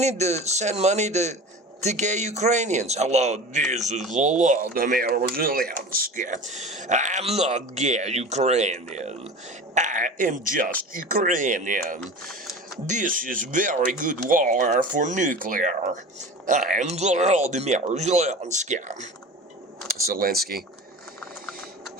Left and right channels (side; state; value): both; normal; correlation 0.35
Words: to send money to gay Ukrainians. Hello, this is Volodymyr Zelensky. I'm not gay Ukrainian. I am just Ukrainian. This is very good war for nuclear. I am Volodymyr Zelensky. Zelensky.